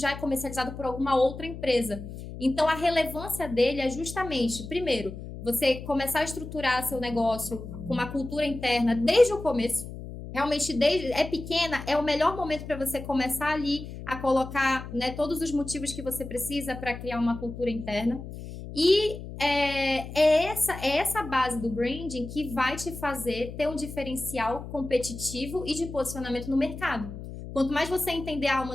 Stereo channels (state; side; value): noise; left; hum, 11 dB below the sound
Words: é comercializado por alguma outra empresa. Então, a relevância dele é justamente, primeiro, você começar a estruturar seu negócio com uma cultura interna desde o começo. Realmente, é pequena, é o melhor momento para você começar ali a colocar, né, todos os motivos que você precisa para criar uma cultura interna. E é essa base do branding que vai te fazer ter um diferencial competitivo e de posicionamento no mercado. Quanto mais você entender a alma